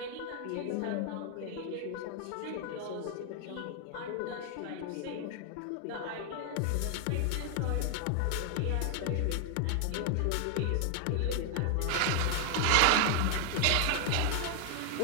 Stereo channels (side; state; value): both; different; correlation 0.00